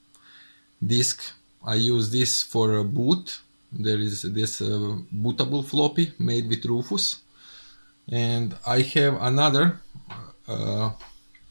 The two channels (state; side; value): inverted; both; correlation -1.00